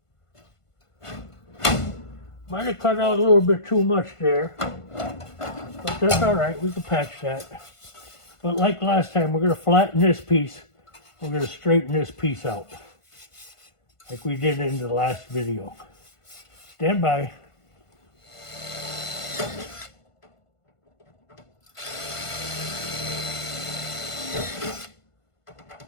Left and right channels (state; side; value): late; right; 1.5 ms